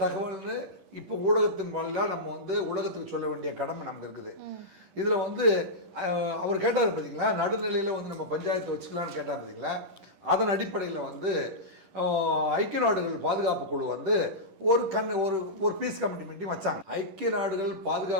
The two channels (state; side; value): late; left; 10 ms